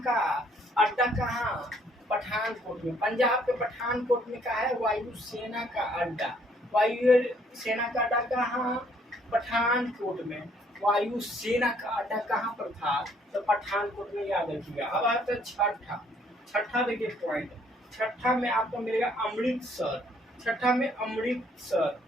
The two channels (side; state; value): both; normal; correlation 0.64